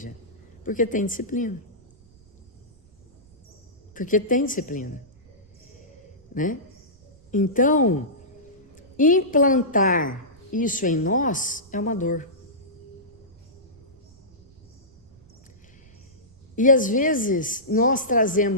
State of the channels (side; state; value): right; noise; rumble, 29 dB below the sound